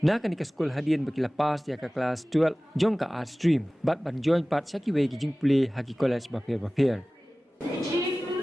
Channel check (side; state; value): both; normal; correlation 0.98